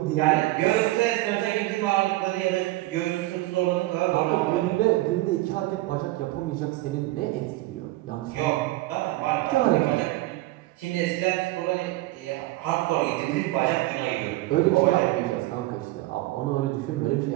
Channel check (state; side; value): quieter; left; 18.3 dB